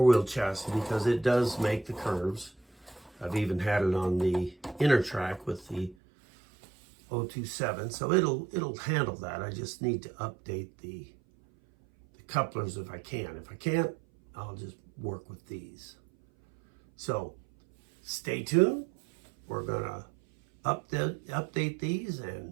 chassis, because it does make the curves. I've even had it on the inner track with the 027, so it'll handle that. I just need to update the couplers if I can. If I can't, I'll just work with these. So stay tuned. We're gonna update these,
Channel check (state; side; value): drops out; left; at 6.0 s